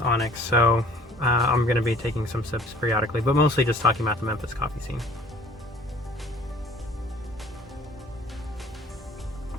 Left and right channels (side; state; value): both; normal; correlation 0.52